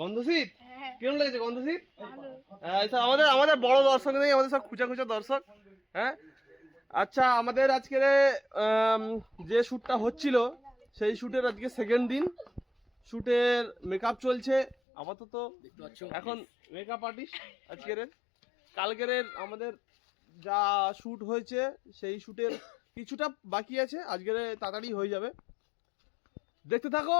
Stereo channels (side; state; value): right; drops out; at 14.8 s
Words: হ্যাঁ কেমন লেগেছে গন্ধশীত? ভালো এইসব আমাদের বড় দর্শক নেই, আমাদের সব খুচা দর্শক। হ্যাঁ, আচ্ছা, আমাদের আজকের যে শ্যুটটা হচ্ছিল সেই শ্যুটের আজকে সেকেন্ড দিন। শ্যুটের মেকআপ চলছে আপাতত, এখন মেকআপ আর্টিস্ট আজকের। কালকের আমাদের যা শ্যুট হয়েছে সেই শ্যুটের কিছুটা বাকি আছে, আজকের তাড়াতাড়ি হয়ে যাবে। দেখতে থাকো,